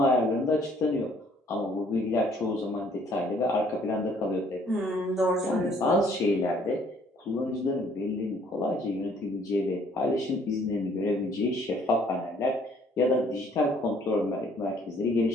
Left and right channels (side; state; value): both; normal; correlation 0.61